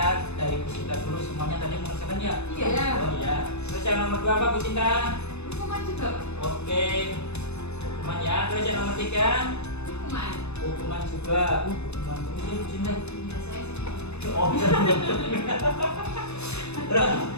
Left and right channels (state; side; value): late; right; 0.81 ms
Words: dari Bu Sinta dulu semuanya tadi mengerjakan ya? Iya. Oh iya. Terus yang nomor 2 apa Bu Sinta? Hukuman juga, Pak. Oke. Hukuman ya. Terus yang nomor 3? Hukuman. Hukuman juga. Hukuman terus ya Bu Sinta. Iya, saya sih. Oh bisa. Terus